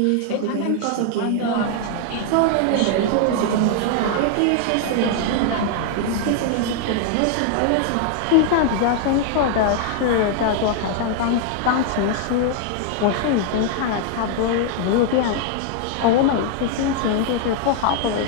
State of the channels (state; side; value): different; both; correlation 0.00